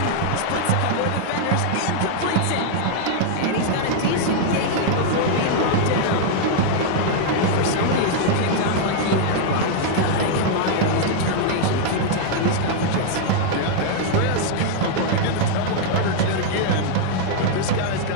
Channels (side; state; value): both; different; correlation -0.01